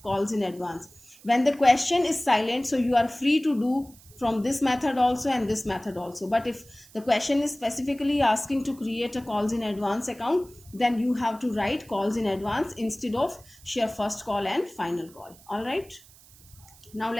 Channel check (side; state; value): right; noise; hiss, 24 dB below the sound